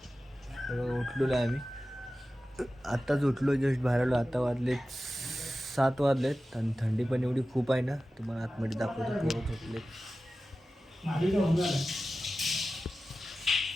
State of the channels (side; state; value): both; normal; correlation 0.94